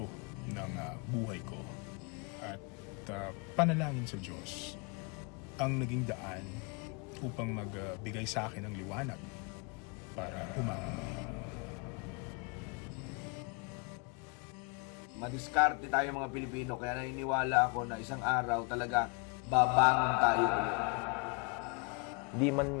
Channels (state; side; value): quieter; right; 33.0 dB